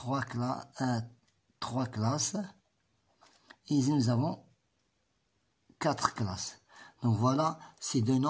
classes. Et ici, nous avons 4 classes. Donc voilà, ces deux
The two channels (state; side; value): identical; both; correlation 1.00